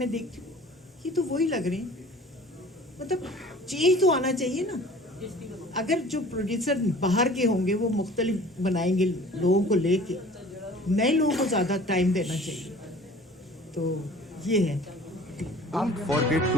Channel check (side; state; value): both; normal; correlation 0.47